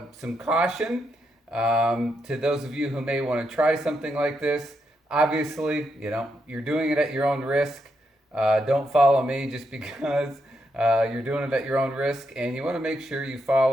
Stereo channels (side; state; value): both; normal; correlation 0.81